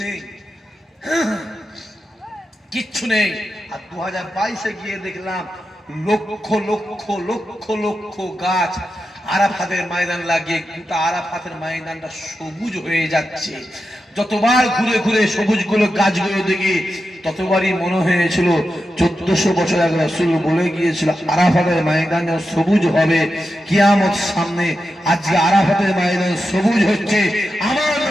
নেই, কিচ্ছু নেই। আর 2022-এ গিয়ে দেখলাম লক্ষ লক্ষ লক্ষ লক্ষ গাছ আরাফাতের ময়দান লাগিয়ে গোটা আরাফাতের ময়দানটা সবুজ হয়ে যাচ্ছে। যতবার ঘুরে ঘুরে সবুজগুলো গাছগুলো দেখি ততবারই মনে হয়েছিল 1400 বছর আগে রাসূল বলে গিয়েছিল আরাফাতের ময়দান সবুজ হবে কিয়ামত সামনে। আজকে আরাফাতের ময়দান সবুজ হচ্ছে, আমার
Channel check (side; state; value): both; normal; correlation 0.90